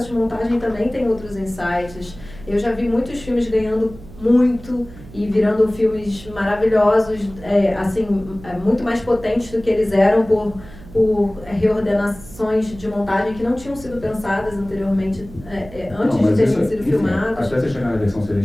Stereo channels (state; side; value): noise; right; hum, 18 dB below the sound